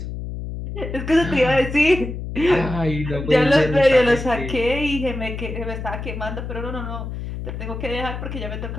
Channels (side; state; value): left; noise; hum, 7 dB below the sound